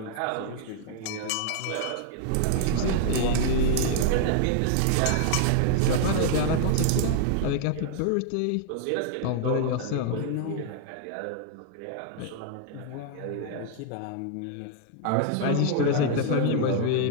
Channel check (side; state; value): both; different; correlation 0.00